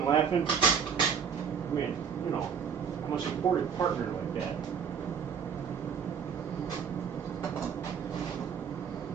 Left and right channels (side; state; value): left; quieter; 7.1 dB